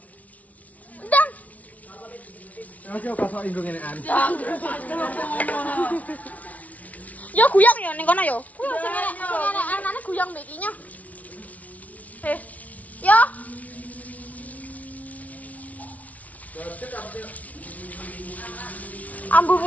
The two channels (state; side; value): late; right; 0.070 ms